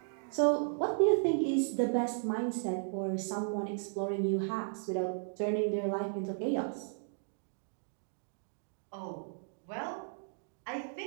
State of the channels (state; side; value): silent; left; digital silence